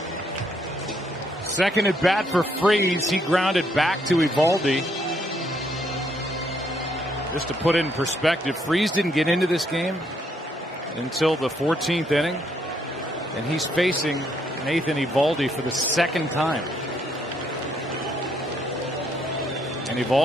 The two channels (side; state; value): both; normal; correlation 0.72